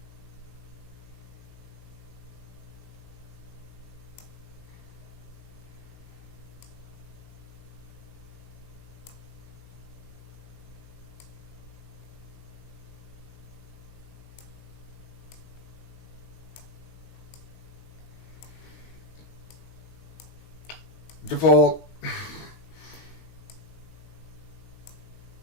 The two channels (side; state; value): right; late; 19 ms